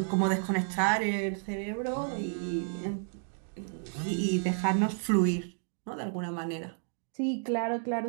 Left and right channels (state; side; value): silent; left; 57 dB below the other